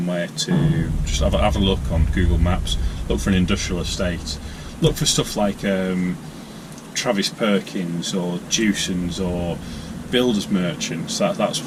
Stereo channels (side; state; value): both; identical; correlation 1.00